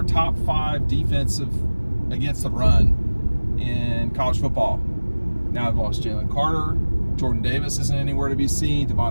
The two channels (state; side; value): inverted; both; correlation -1.00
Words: top 5 defensive against the run in college football. Now they've lost Jalen Carter. Jordan Davis isn't anywhere to be seen.